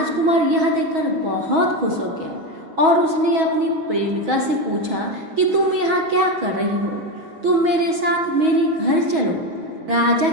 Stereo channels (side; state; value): left; late; 6.2 ms